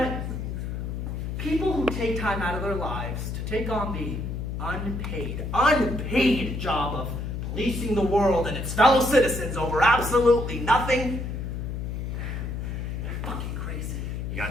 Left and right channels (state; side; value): noise; left; hum, 4 dB below the sound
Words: People who take time out of their lives to take on the unpaid job of policing the world and its fellow citizens over absolutely nothing, they're fucking crazy. You